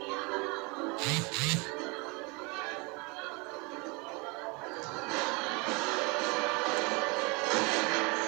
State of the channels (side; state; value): left; quieter; 28.8 dB